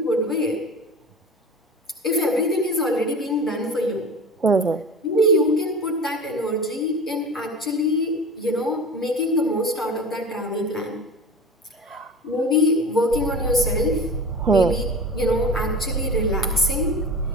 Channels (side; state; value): both; normal; correlation 0.34